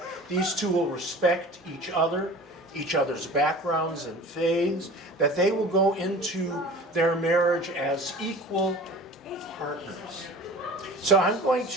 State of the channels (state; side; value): normal; both; correlation 0.40